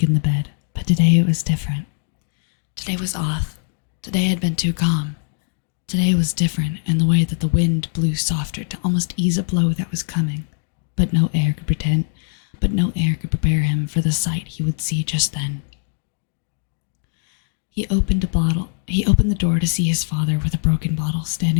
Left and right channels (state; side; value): silent; right; digital silence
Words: in the bed. But today it was different. Today was off. Today had been too calm. Today was different in the way that the wind blew softer to almost ease a blow that was coming, but no air could prepare him for the sight he would see just then. He opened the door to see his father with a broken bottle